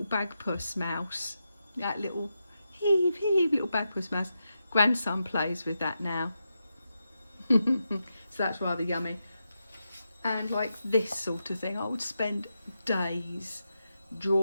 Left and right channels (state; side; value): inverted; both; correlation -0.87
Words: bagpuss mouse? That little heave little bagpuss mouse. Grandson plays with that now. So that's rather yummy. And like this sort of thing, I would spend days